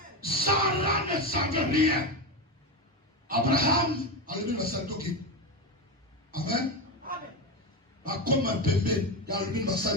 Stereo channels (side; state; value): both; normal; correlation 0.16